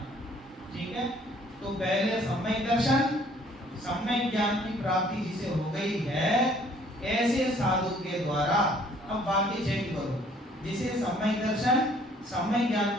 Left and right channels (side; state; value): both; normal; correlation 0.59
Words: ठीक है, तो पहले सम्यक दर्शन, सम्यक ज्ञान की प्राप्ति जिसे हो गई है, ऐसे साधु के द्वारा, अब बाकी चेक करो, जिसे सम्यक दर्शन सम्यक ज्ञान